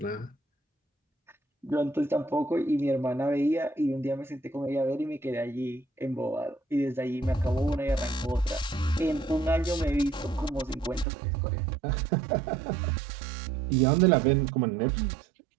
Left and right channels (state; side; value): drops out; left; at 11.1 s